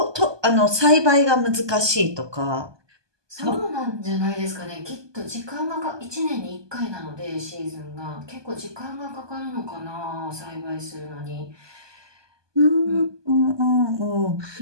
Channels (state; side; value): late; left; 1.2 ms